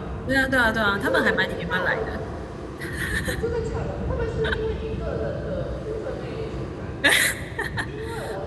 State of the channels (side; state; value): both; identical; correlation 1.00